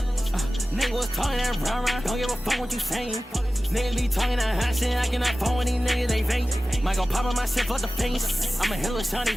Nigga was talking that rah-rah, don't give a fuck what you saying. Niggas be talking that hot shit, I cannot phone with these niggas, they fake. Might go pop on my shit for the face. I'm a hella shawty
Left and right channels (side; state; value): both; normal; correlation 0.96